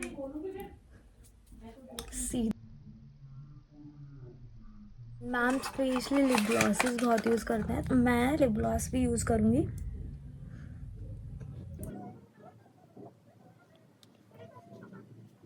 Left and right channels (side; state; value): both; identical; correlation 1.00